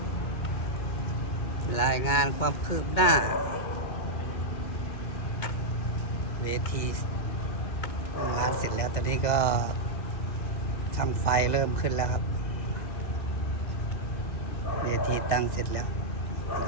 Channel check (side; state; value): right; late; 2.2 ms